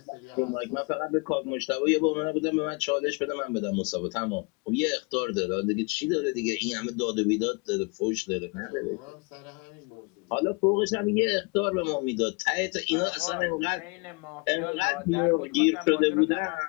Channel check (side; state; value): right; quieter; 30.8 dB